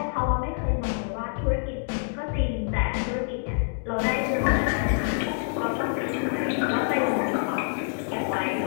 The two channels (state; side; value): silent; right; digital silence